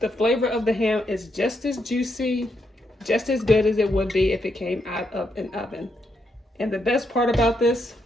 The flavor of the ham is just as juicy, just as good as it would be if it came out of an oven. And the best part about this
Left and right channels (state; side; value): normal; both; correlation 0.79